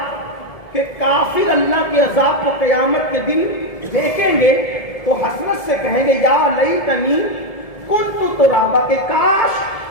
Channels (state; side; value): late; right; 1.7 ms